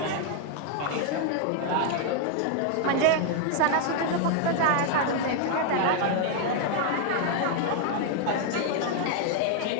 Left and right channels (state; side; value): different; both; correlation 0.00